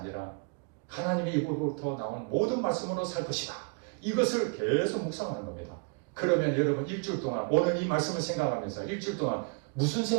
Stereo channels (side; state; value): left; quieter; 32.6 dB